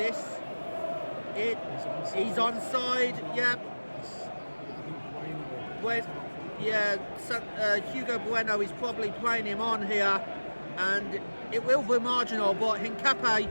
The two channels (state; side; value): inverted; both; correlation -1.00